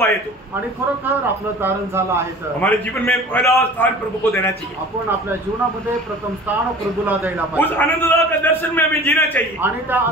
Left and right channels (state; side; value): normal; both; correlation 0.42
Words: है तो आणि खरोखर आपलं तारण झालं आहे तर हमारे जीवन में पहला स्थान प्रभु को देना चाहिए। आपण आपल्या जीवनामध्ये प्रथम स्थान प्रभूला द्यायला उस पाहिजे आनंददायक का दर्शन में हमें जीना चाहिए, आणि त्या